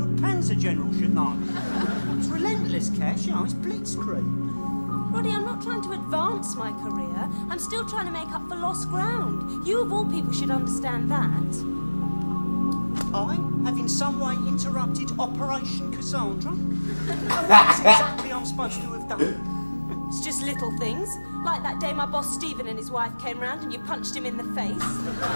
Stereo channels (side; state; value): both; inverted; correlation -1.00